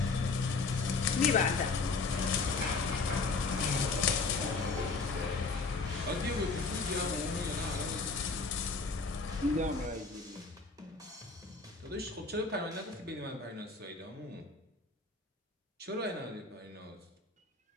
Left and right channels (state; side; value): quieter; right; 4.0 dB